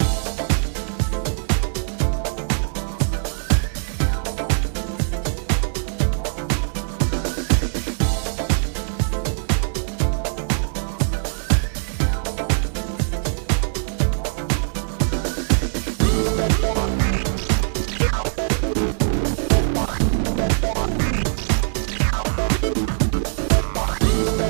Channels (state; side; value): silent; left; 64 dB below the other